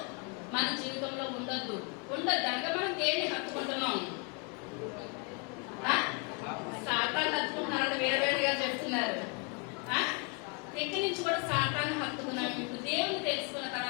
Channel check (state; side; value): quieter; right; 32.8 dB